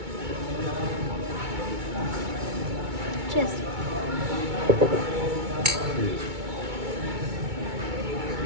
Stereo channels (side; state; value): left; late; 2.2 ms